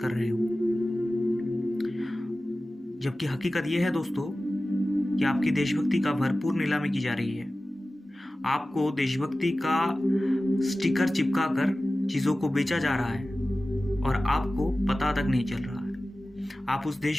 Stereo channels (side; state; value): both; normal; correlation 0.96